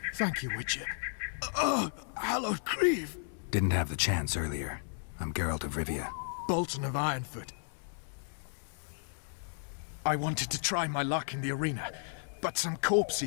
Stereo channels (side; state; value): right; silent; digital silence